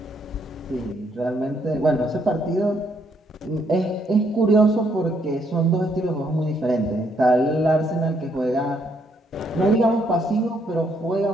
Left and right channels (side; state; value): both; normal; correlation 0.72